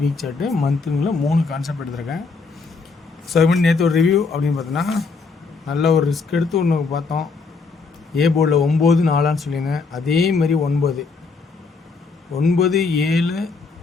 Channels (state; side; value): quieter; right; 4.5 dB